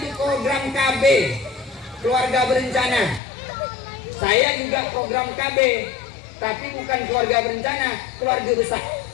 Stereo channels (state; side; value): drops out; right; at 3.2 s